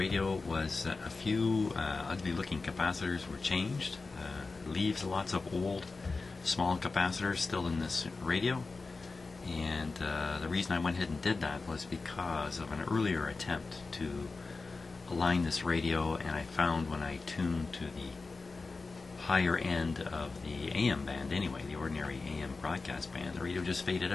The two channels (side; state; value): right; quieter; 3.9 dB